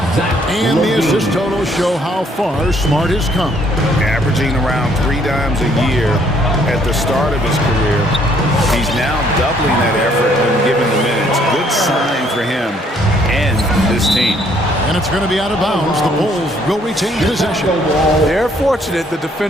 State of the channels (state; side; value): normal; both; correlation 0.65